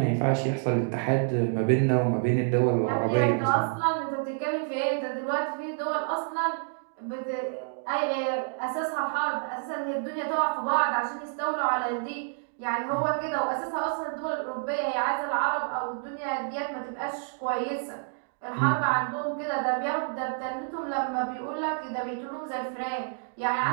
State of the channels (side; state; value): left; silent; digital silence